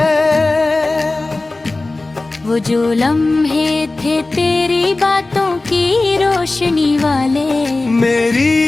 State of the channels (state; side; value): quieter; right; 3.1 dB